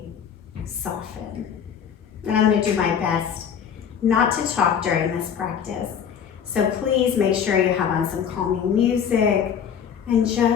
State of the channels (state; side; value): quieter; right; 7.8 dB